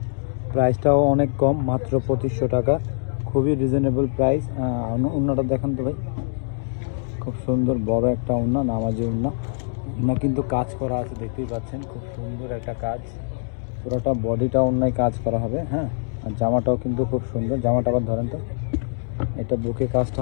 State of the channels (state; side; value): silent; right; digital silence